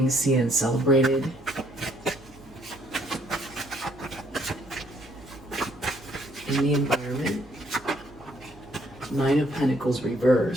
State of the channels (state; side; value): noise; right; hum, 23 dB below the sound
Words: seen and celebrated. In the environment, Nine of Pentacles